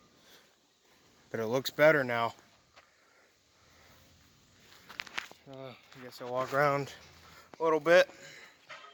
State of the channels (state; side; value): identical; both; correlation 1.00